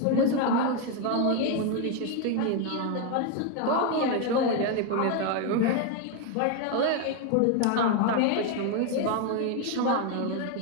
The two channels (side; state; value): both; different; correlation 0.01